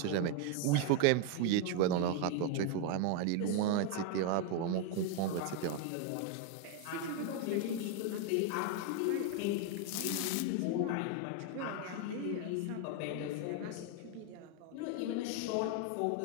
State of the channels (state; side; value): different; both; correlation 0.01